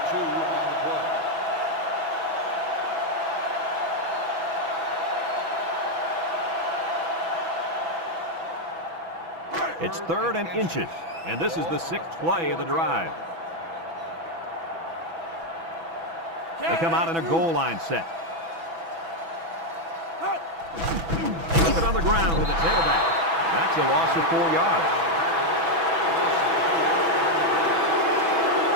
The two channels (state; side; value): late; left; 6.1 ms